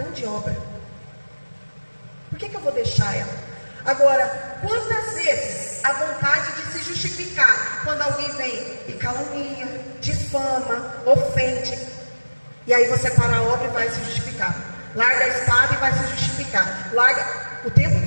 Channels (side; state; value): both; inverted; correlation -1.00